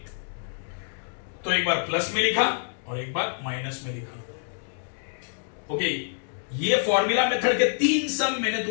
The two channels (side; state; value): right; silent; digital silence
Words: तो एक बार प्लस में लिखा और एक बार माइनस में लिखा। ओके ये फॉर्मूला मेथड के 3 सम मैंने